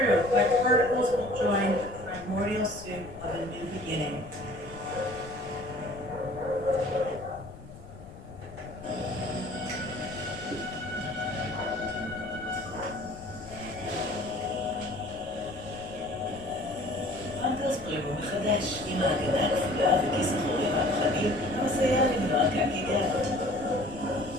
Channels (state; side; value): noise; left; rumble, 17 dB below the sound